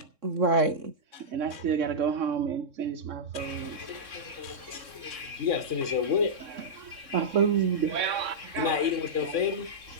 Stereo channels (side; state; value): left; late; 3.6 ms